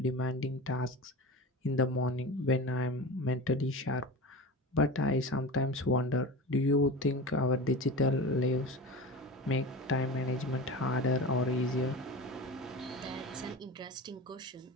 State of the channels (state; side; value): normal; both; correlation 0.30